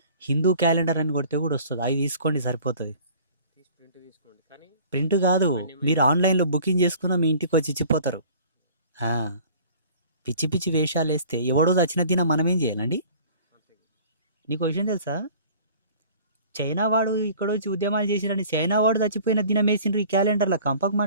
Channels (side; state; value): both; inverted; correlation -0.48